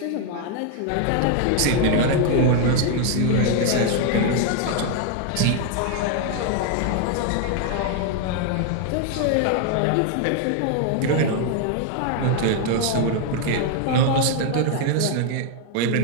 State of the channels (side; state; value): both; different; correlation 0.00